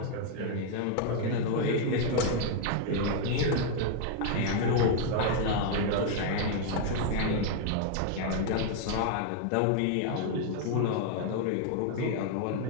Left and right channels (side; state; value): both; different; correlation 0.00